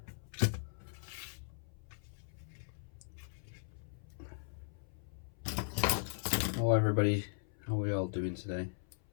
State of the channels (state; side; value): silent; right; 52 dB below the other